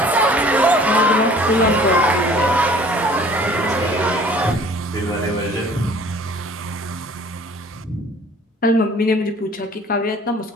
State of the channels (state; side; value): normal; both; correlation 0.51